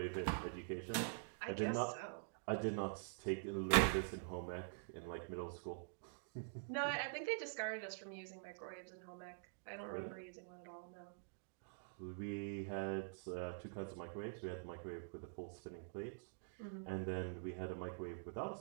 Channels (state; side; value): silent; left; digital silence